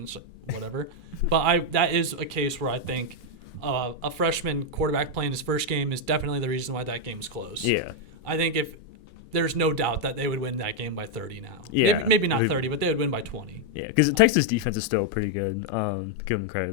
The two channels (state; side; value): normal; both; correlation 0.00